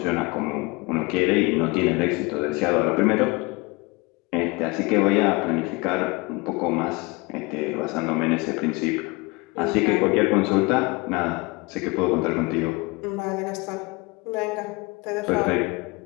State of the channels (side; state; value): right; quieter; 25.5 dB